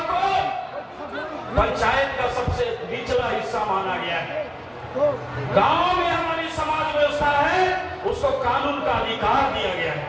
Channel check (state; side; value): identical; both; correlation 1.00